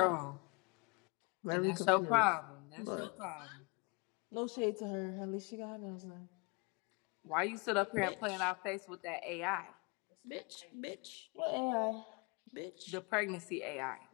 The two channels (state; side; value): quieter; right; 30.3 dB